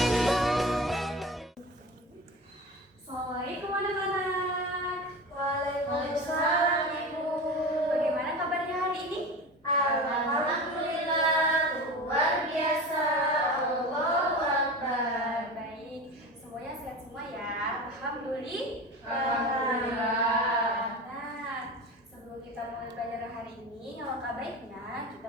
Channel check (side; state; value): both; normal; correlation 0.30